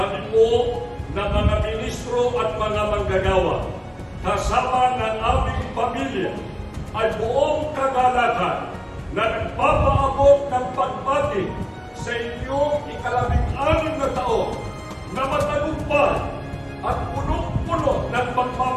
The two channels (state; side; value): identical; both; correlation 1.00